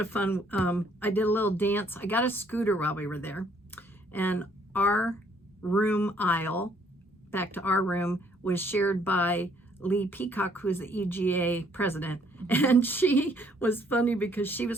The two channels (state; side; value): normal; both; correlation 0.65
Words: fun. I did a little dance. I got a scooter while we were there. And our room aisle, back to our room, was shared by Lee Peacock, who's the EGA president. And she was funny because she was